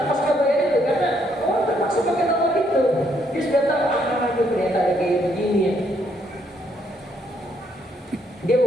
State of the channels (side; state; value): both; normal; correlation 0.72